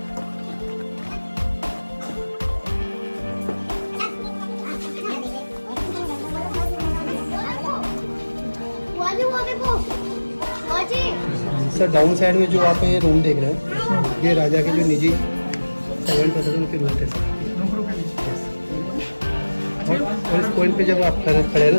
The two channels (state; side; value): inverted; both; correlation -1.00